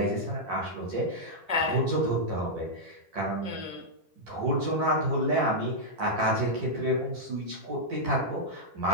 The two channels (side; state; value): left; late; 10 ms